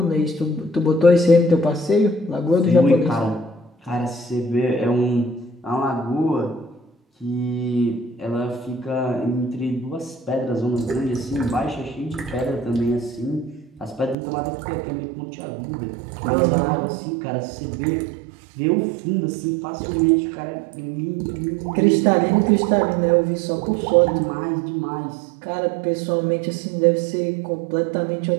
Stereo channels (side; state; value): left; drops out; at 14.2 s